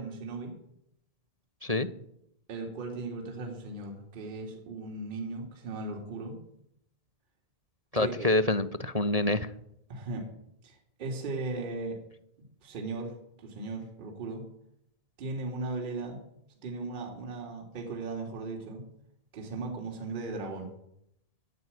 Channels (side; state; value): left; late; 1.7 ms